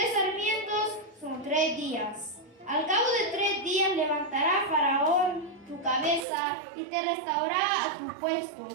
sarmientos son 3 días. Al cabo de 3 días levantará Faraón tu cabeza y te restaurará a tu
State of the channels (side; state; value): left; drops out; at 6.2 s